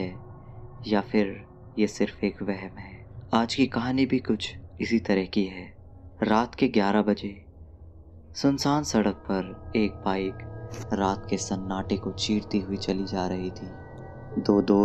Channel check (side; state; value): both; identical; correlation 1.00